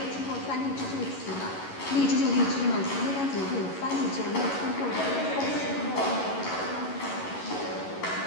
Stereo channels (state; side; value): late; right; 11 ms